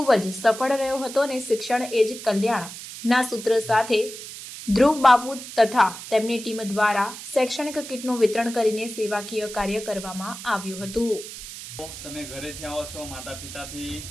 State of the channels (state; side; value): noise; right; hiss, 12 dB below the sound